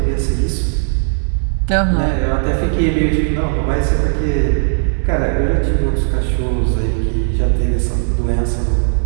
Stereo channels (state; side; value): silent; left; digital silence